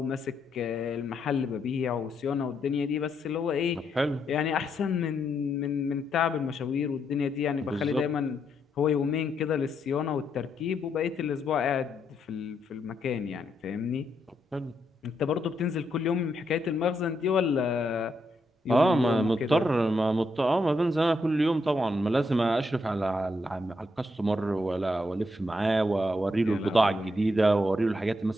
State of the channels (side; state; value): both; normal; correlation 0.79